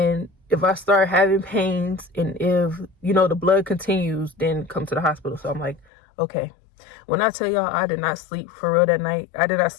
if I start having pains and if, you know, the blood continues, then come to the hospital. So I'm like, okay. When I tell y'all I did not sleep for real that night, I did not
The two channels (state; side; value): drops out; right; at 5.9 s